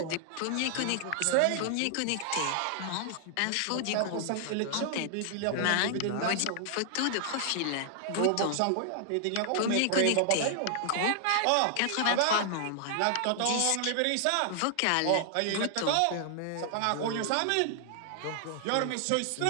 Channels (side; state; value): both; different; correlation 0.00